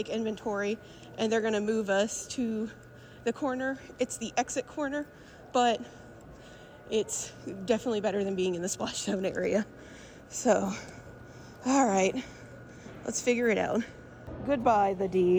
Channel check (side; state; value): both; identical; correlation 1.00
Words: inventory, and they're gonna move us to the corner. It's the exit corner, but it's definitely better than being in the splash zone area. So, all right, let's figure it out. Goodbye, the